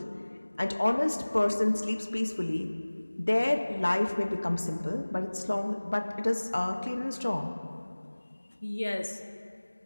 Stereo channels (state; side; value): inverted; both; correlation -1.00